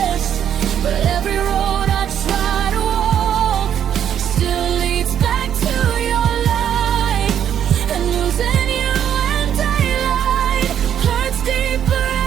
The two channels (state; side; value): quieter; left; 9.5 dB